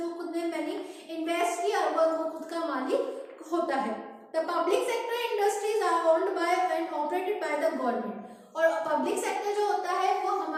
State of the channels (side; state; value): both; identical; correlation 1.00